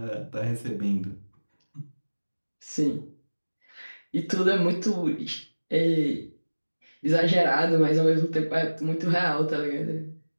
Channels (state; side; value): inverted; both; correlation -1.00